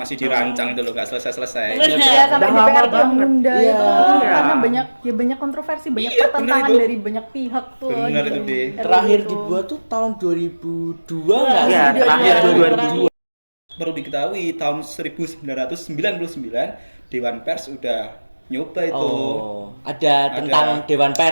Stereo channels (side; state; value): both; inverted; correlation -1.00